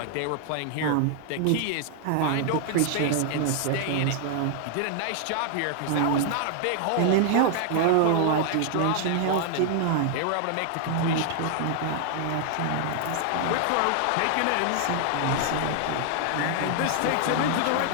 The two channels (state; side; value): different; both; correlation 0.00